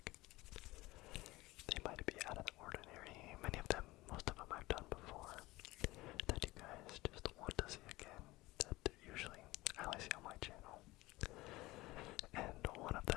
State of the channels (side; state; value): right; quieter; 19.7 dB